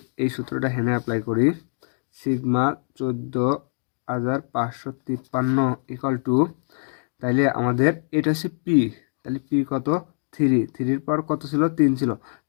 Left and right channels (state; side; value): silent; right; digital silence